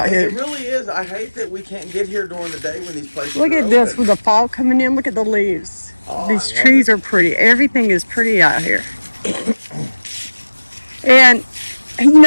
here. It really is. I hate that we can't get here during the day when these places Look are at this open. with the fall coming in. Look at the leaves. Oh, These I love trees it. are pretty. Everything is pretty out here. And, you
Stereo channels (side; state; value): both; inverted; correlation -1.00